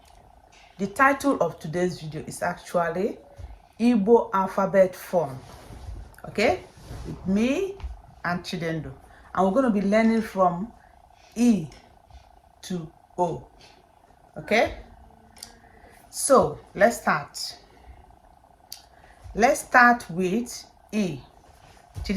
the title of today's video is actually Igbo alphabet form, okay, with me and Chidendo, and we're going to be learning from E to O. Okay, so let's start. Let's start with E.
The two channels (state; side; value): identical; both; correlation 1.00